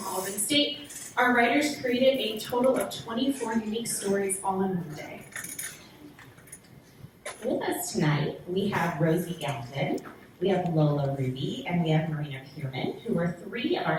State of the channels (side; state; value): both; identical; correlation 1.00